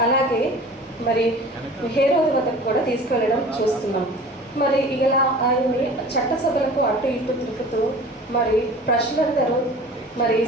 అలాగే మరి హేరోదు వద్దకు కూడా తీసుకువెళ్ళడం చూస్తున్నాం. మరి ఇలా ఆయన్ని చట్టసభలకు అటు ఇటు తిరుగుతూ మరి ప్రజలందరూ మరి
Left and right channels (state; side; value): normal; both; correlation 0.42